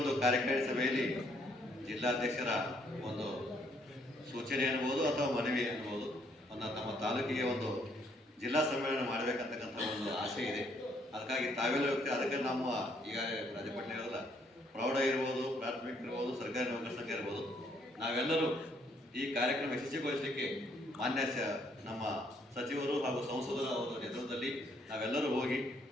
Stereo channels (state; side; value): normal; both; correlation 0.68